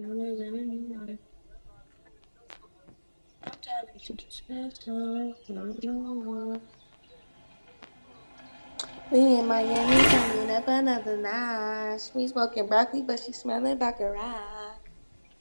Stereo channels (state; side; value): inverted; both; correlation -1.00